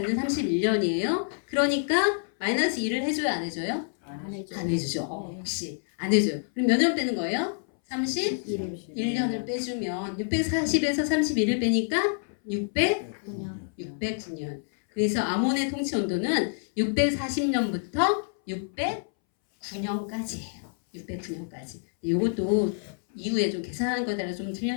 31년이에요. 그러니까 마이너스 2를 해줘요, 안 해줘요? 안 해주죠. 역시 안 해줘요. 그럼 몇 년 빼는 거예요? 31년을 빼주면 640에서 31을 빼니까 609년. 그래서 아몬의 통치 연도는 640년부터 609년까지예요. 609년까지. 이것도 이후에 좀 계산하는 거에 따라 좀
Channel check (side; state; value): right; silent; 60 dB below the other